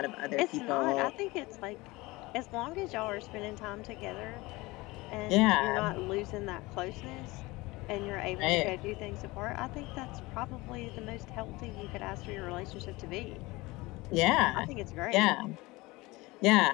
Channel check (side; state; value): right; quieter; 21.8 dB